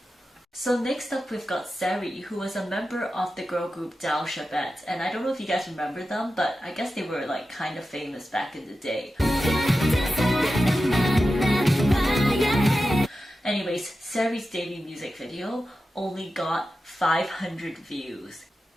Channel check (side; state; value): both; normal; correlation 0.92